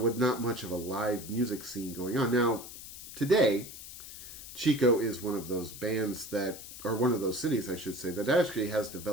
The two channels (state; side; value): noise; left; hiss, 13 dB below the sound